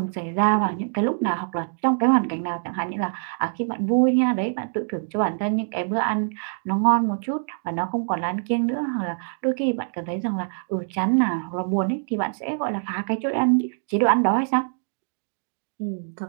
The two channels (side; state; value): left; silent; digital silence